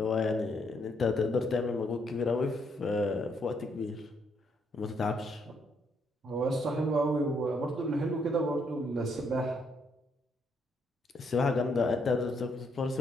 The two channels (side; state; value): both; normal; correlation 0.73